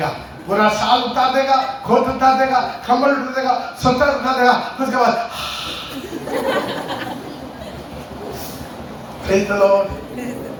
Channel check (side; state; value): both; identical; correlation 1.00